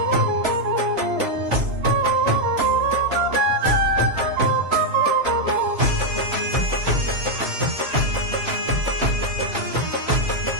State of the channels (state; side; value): late; left; 3.0 ms